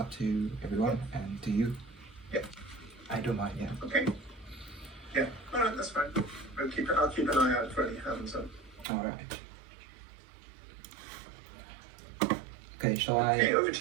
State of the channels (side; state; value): left; drops out; at 8.8 s